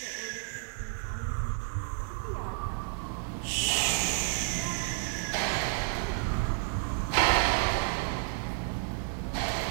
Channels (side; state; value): left; silent; digital silence